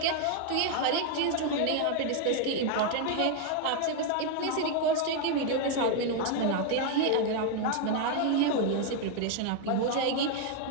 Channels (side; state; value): both; different; correlation 0.01